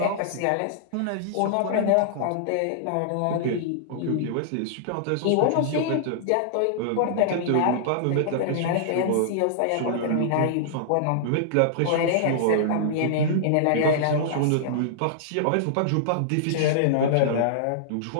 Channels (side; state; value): both; different; correlation -0.02